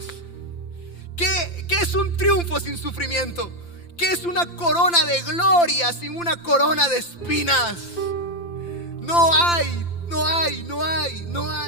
¿Qué es un triunfo sin sufrimiento? ¿Qué es una corona de gloria sin una corona de espinas? No hay.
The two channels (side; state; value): right; late; 5.8 ms